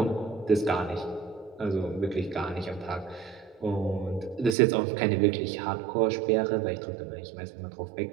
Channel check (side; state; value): left; drops out; at 4.5 s